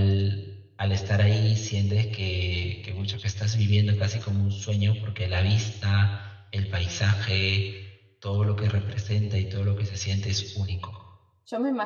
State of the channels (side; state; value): both; identical; correlation 1.00